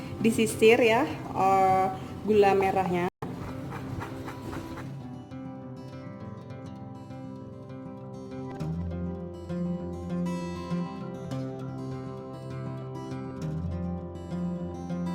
disisir ya gula merahnya.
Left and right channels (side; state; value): both; identical; correlation 1.00